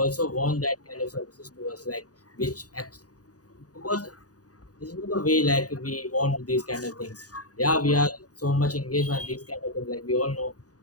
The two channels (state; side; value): late; right; 0.67 ms